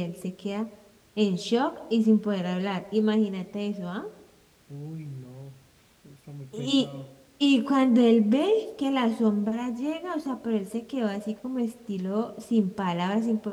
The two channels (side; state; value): both; identical; correlation 1.00